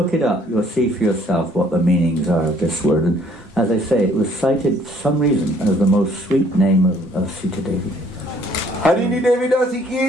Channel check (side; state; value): both; normal; correlation 0.61